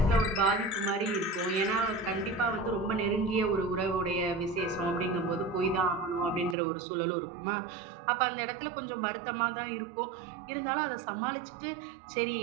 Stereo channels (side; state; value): left; drops out; at 6.6 s